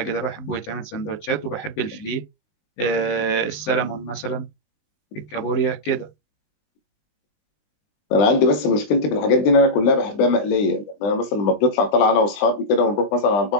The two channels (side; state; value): right; late; 20 ms